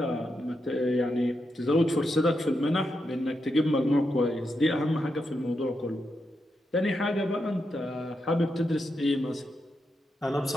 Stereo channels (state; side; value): normal; both; correlation 0.85